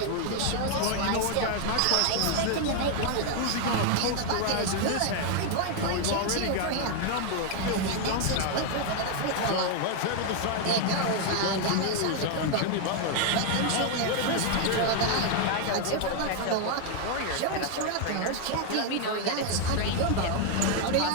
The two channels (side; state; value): both; different; correlation 0.00